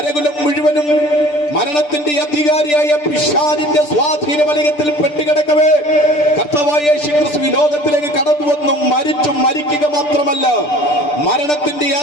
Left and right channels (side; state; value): right; late; 6.8 ms